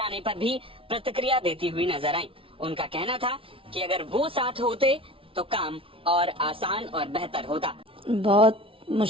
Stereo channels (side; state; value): left; late; 0.26 ms